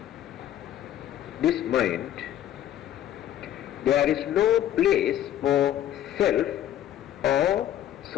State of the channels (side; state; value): right; quieter; 11.7 dB